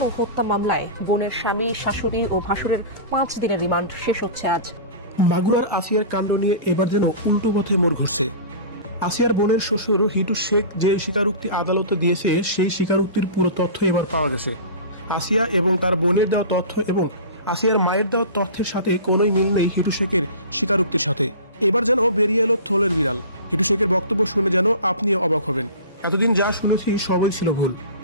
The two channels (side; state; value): both; inverted; correlation -0.35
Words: ও হত্যা মামলায় বোনের স্বামী, শাশুড়ি ও ভাসুরের 5 দিনের রিমান্ড শেষ হচ্ছে আজ। মাগুরার আসিয়ার কাণ্ড নিয়ে এবার যেন উল্টো পথে মোড় ঘুরছে। আসিয়ার বোনের শ্বশুর হিটু শেখ যে স্বীকারোক্তি আদালতে দিয়েছে সেই স্বীকারোক্তির পুরো তথ্য এবার পাওয়া গেছে। আসিয়া এবং তার বোনের দেওয়া তথ্য এবং আসিয়ার মায়ের দেওয়া তথ্যের সাথে কোনোই মিল নেই হিটু শেখের স্বীকারোক্তির সাথে। এবার যেন বেরিয়ে এলো থলের বিড়াল। হিটু শেখের বক্তব্য শুনে যেন আপনিও অবাক হবেন। এতদিন যা শুনেছি সবাই ছিল ভুল,